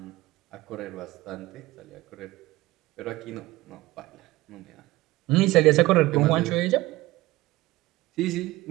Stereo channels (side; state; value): left; quieter; 18.5 dB